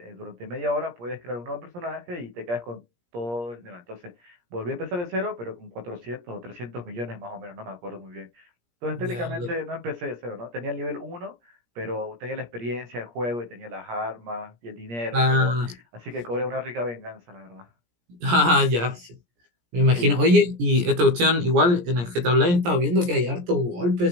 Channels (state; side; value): late; left; 17 ms